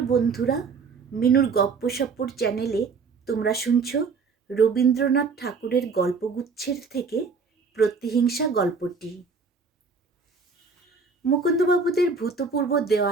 বন্ধুরা, মিনুর গপ্পসপ্পর চ্যানেলে তোমরা শুনছ রবীন্দ্রনাথ ঠাকুরের গল্পগুচ্ছের থেকে প্রতিহিংসা গল্পটি। মুকুন্দবাবুদের ভূতপূর্ব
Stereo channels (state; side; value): quieter; left; 4.9 dB